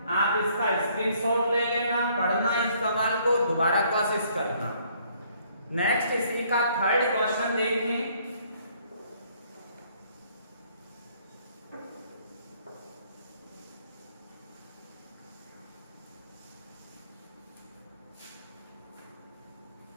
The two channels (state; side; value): inverted; both; correlation -0.64